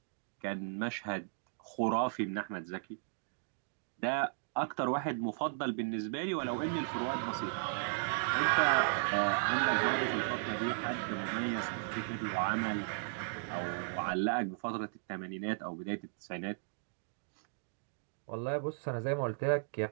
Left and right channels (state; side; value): silent; left; digital silence